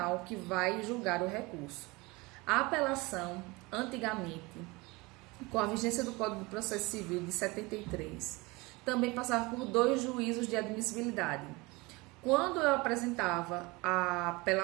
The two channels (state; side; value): quieter; left; 24.1 dB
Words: que vai julgar o recurso. A apelação, antigamente, com a vigência do Código de Processo Civil de 73, também passava por 2 juízos de admissibilidade. Quando eu apresentava a